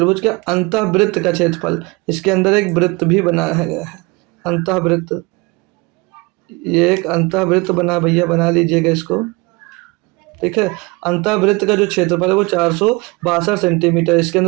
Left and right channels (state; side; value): quieter; left; 25.6 dB